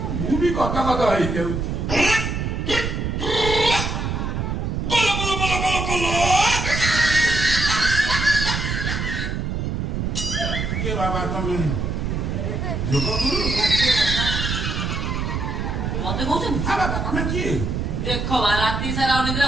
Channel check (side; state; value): right; noise; rumble, 2 dB below the sound